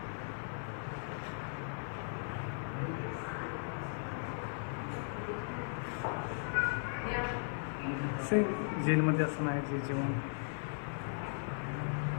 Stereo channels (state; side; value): silent; right; 53 dB below the other